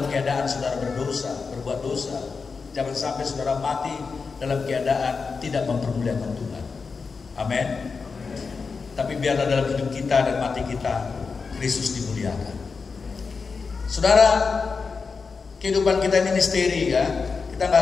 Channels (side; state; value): right; quieter; 4.9 dB